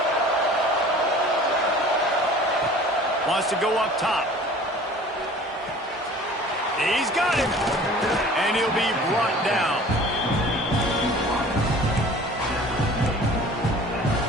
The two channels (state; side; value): normal; both; correlation 0.46